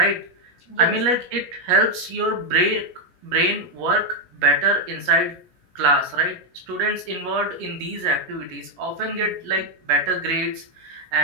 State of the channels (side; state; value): left; late; 17 ms